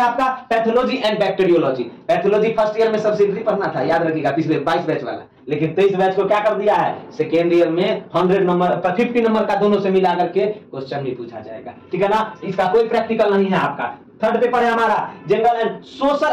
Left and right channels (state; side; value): identical; both; correlation 1.00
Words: आपका pathology and bacteriology. Pathology first year में सब्सिडरी पढ़ना था, याद रखिएगा, पिछले 22 बैच वाला, लेकिन 23 बैच को क्या कर दिया है, सेकेंड ईयर में 100 नंबर 50 नंबर का दोनों से मिला करके क्वेश्चन भी पूछा जाएगा, ठीक है ना। इसका कोई प्रैक्टिकल नहीं है आपका, थर्ड पेपर है हमारा general and